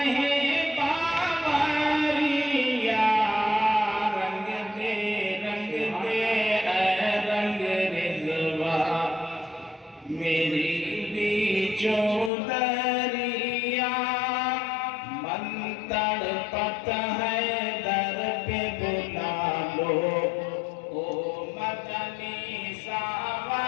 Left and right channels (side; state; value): right; drops out; at 12.3 s